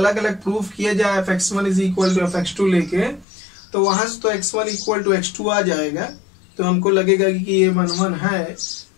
अलग प्रूफ किया जाए fx1 is equal to fx2 लेके, तो वहां से तो x1 इक्वल टू x2 आ जाएगा, तो हमको लगेगा कि ये 1 1 है।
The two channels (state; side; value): drops out; right; at 3.2 s